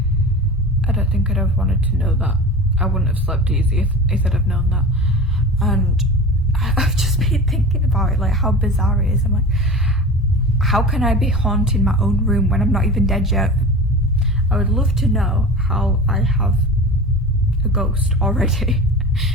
I don't think I'd have wanted to know that. I wouldn't have slept easy if I'd have known that. And I've just been thinking about it, like how bizarre it is. I'm like, how can I be haunting my own room when I'm not even dead yet? I would love to know how I have a ghost already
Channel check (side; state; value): both; normal; correlation 0.33